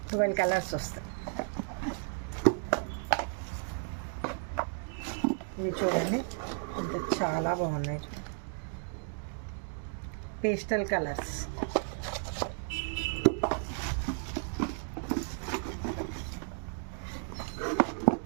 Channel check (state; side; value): silent; left; 55 dB below the other